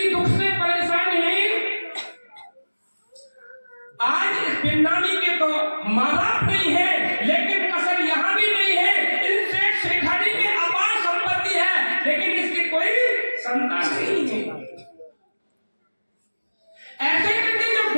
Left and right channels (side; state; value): both; inverted; correlation -1.00